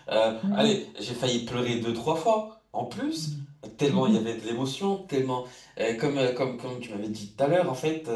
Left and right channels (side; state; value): both; identical; correlation 1.00